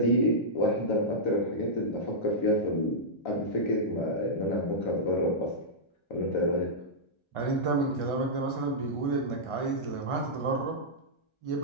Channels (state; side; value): late; right; 1.3 ms